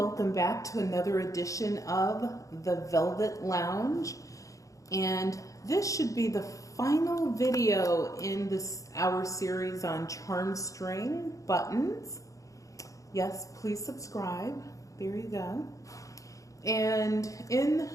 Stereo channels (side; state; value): right; late; 0.16 ms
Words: back to another edition of the Velvet Lounge, and this should be the final video in our series on Charmstring buttons. Yes, please subscribe. There you go. And in